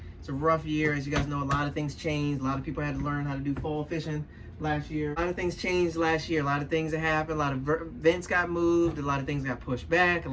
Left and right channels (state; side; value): identical; both; correlation 1.00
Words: It's a rough year. As you guys know, a lot of things changed. A lot of people had to learn how to do fall fishing last year. A lot of things changed last year. A lot of things that happened. A lot of events got moved. A lot of things got pushed back. A